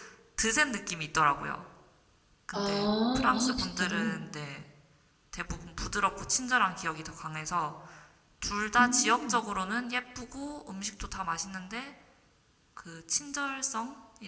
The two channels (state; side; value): identical; both; correlation 1.00